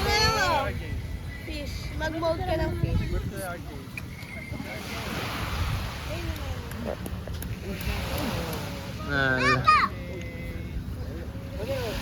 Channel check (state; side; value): identical; both; correlation 1.00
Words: Fish. Mag-mold ka ng fish.